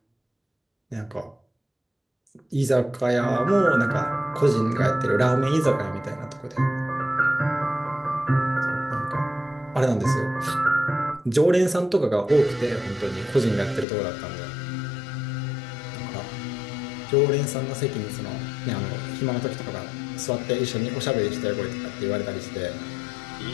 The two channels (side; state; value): right; drops out; at 13.9 s